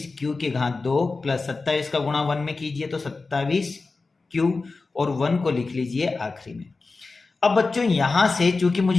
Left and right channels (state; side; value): quieter; right; 3.9 dB